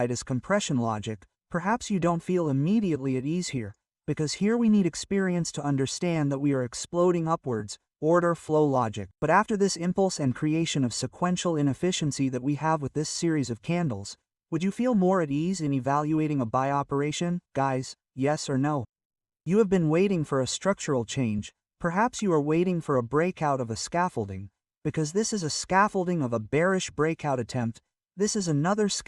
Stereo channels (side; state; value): both; identical; correlation 1.00